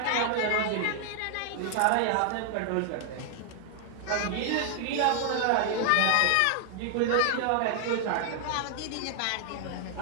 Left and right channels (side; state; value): both; different; correlation 0.00